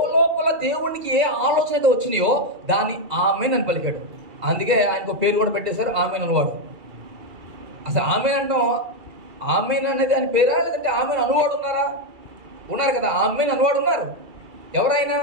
దేవుడికి ఏ ఆలోచన అయితే వచ్చినాయో దాన్ని ఆమెన్ అని పలికాడు. అందుకే ఆయనకు పేరు కూడా పెట్టేశారు, ఆమెన్ అనువాడు. అసలు ఆమెన్ అంటాం, ఆమెన్ అనేది ఆయన పేరా లేదంటే ఆమెన్ అనువాడు ఉన్నారా? ఉన్నారు కదా, ఆమెన్ అనువాడు ఉన్నారు. ఎవరైనా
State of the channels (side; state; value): left; late; 2.3 ms